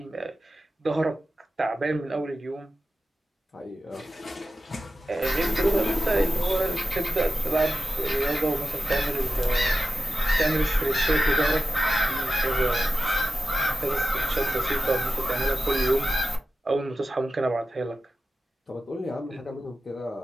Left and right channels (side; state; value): both; normal; correlation 0.92